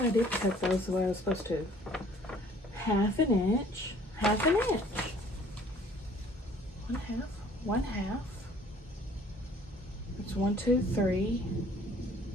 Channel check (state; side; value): normal; both; correlation 0.55